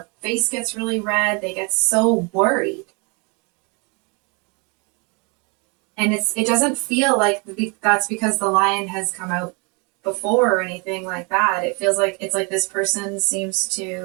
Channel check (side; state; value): left; quieter; 32.1 dB